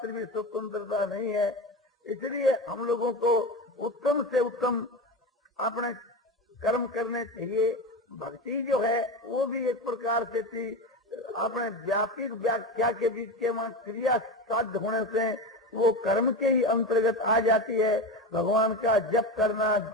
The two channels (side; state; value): both; normal; correlation 0.23